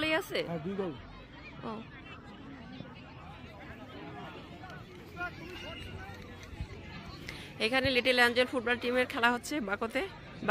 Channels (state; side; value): identical; both; correlation 1.00